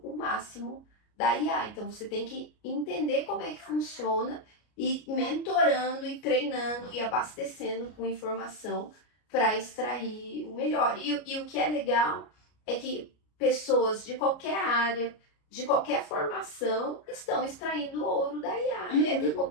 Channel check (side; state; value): right; late; 33 ms